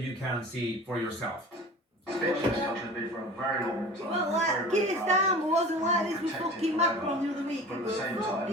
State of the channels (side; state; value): both; normal; correlation 0.39